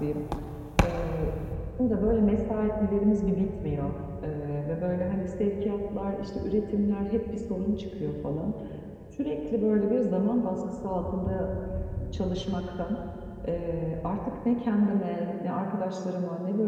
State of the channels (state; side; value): identical; both; correlation 1.00